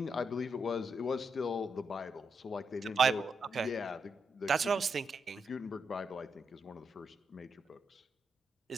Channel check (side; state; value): both; normal; correlation 0.82